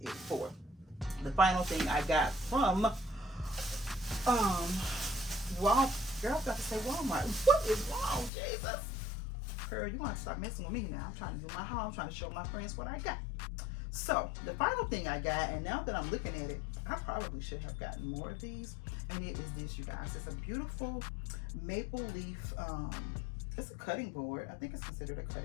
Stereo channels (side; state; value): right; drops out; at 8.3 s